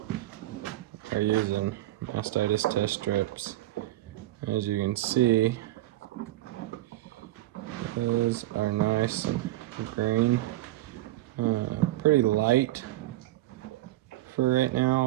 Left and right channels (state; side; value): quieter; left; 15.7 dB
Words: are using mastitis test strips. As you can see, those are nice and green. Pretty light for right